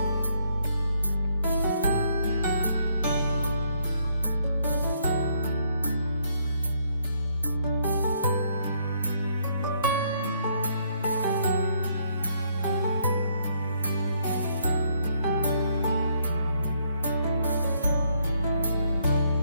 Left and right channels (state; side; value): inverted; both; correlation -0.70